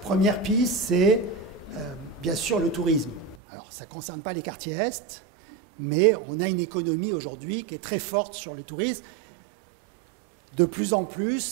piste, c'est bien sûr le tourisme. Alors, ça ne concerne pas les quartiers Est, mais on a une économie aujourd'hui qui est très forte sur le tourisme. De plus en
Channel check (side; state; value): left; drops out; at 3.4 s